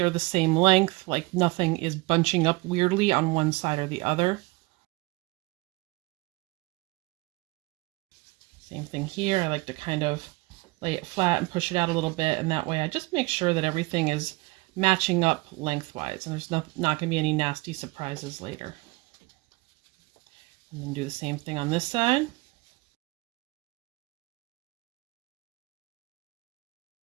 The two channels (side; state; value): left; quieter; 23.9 dB